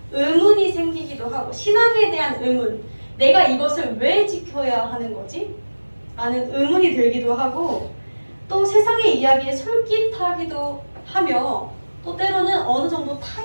의문이 생기기도 하고, 신앙에 대한 의문, 내가 이것을 왜 지켜야 하는 거지? 라는 의문이 들기도 하고, 또 세상의 이야기에 솔깃하기도 하며, 또 때로는 어느 정도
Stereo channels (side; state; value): both; inverted; correlation -1.00